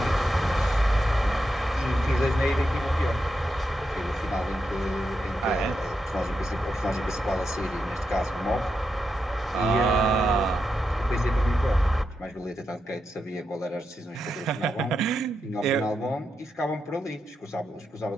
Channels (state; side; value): normal; both; correlation 0.86